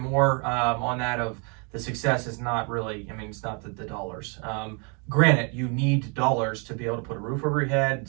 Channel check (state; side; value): quieter; left; 35.3 dB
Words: on that. Of the success is not really, I mean, it's not the dollars. Granted, you need dollars to be able to put a roof over your head,